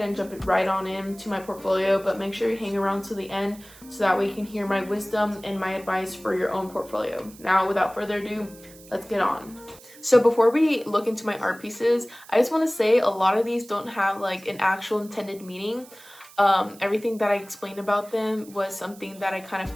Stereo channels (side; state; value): right; noise; hiss, 21 dB below the sound